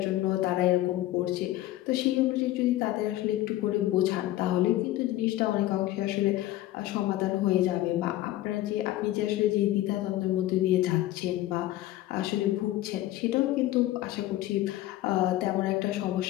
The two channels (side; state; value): right; quieter; 15.4 dB